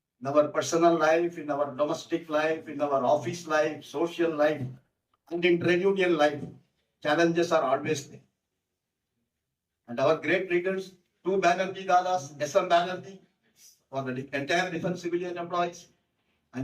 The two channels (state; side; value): identical; both; correlation 1.00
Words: In our personal life, in our domestic life, in our office life, social life, and in trade union life, challenges are always there. And our great leaders, two Banerjee Dadas, S.M. Banerjee for the entire defense civilian employees,